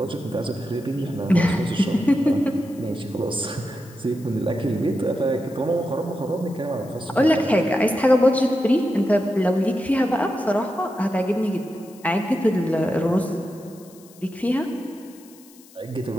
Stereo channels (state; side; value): noise; left; hiss, 25 dB below the sound